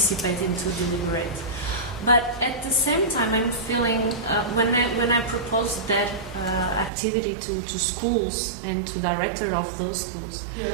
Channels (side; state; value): left; drops out; at 6.9 s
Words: into deliberate. But at the same time, I'm feeling when I proposed that activity to schools and to director of those schools,